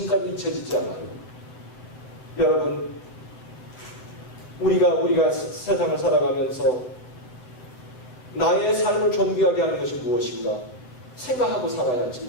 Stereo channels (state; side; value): late; right; 8.3 ms